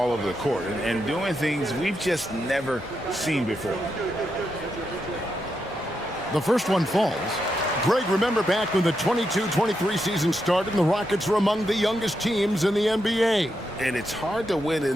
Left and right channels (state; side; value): normal; both; correlation 0.84